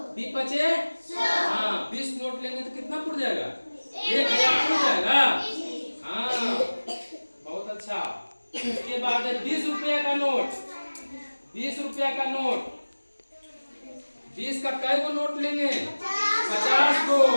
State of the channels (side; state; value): both; inverted; correlation -1.00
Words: 20 बचे, हाँ 20 नोट लेंगे तो कितना पुड़ जाएगा? 1000 पुड़ जाएगा। हाँ बहुत अच्छा। उसके बाद है 20 रुपया का नोट। 20 रुपया का नोट, 20 का कई गो नोट लेंगे? 50 को।